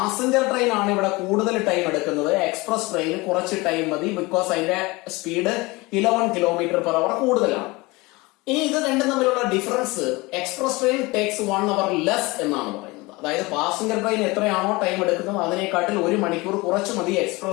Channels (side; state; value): right; quieter; 23.2 dB